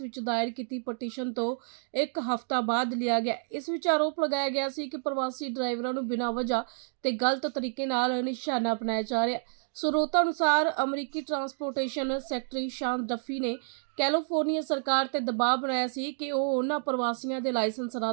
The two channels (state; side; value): silent; left; digital silence